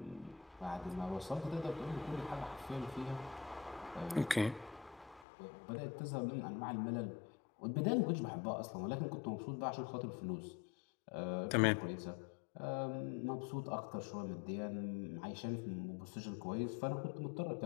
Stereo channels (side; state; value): right; drops out; at 5.2 s